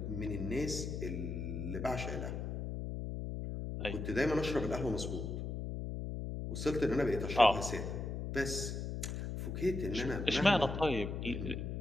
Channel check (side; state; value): left; noise; hum, 4 dB below the sound